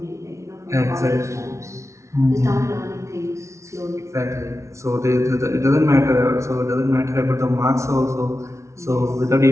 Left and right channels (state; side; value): late; left; 0.14 ms